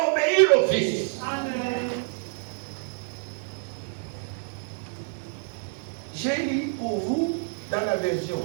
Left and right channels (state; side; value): silent; left; digital silence